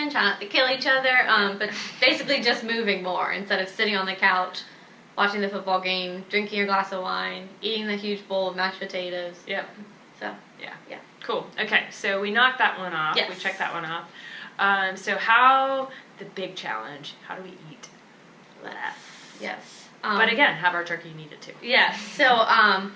try not to kill each other, but basically just moving more instead of sitting on the couch, watching the football game, drinking your glass of wine, eating the huge bowl of mashed potatoes. Yep. So, yeah. Cool. Okay, so we knocked that one off. Yes. We checked that one off. So how... the big challenge, how do we eat less? Yes. But again, have our turkey and eat it too. Yes. So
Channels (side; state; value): both; identical; correlation 1.00